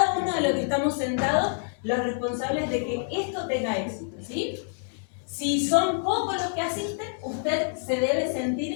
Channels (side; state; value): right; silent; digital silence